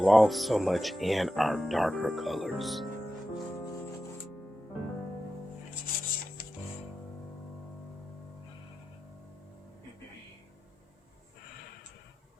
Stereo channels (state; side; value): normal; both; correlation 0.91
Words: so much in our darker colors.